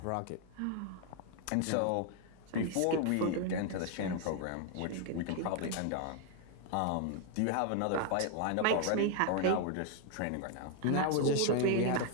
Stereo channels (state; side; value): different; both; correlation 0.00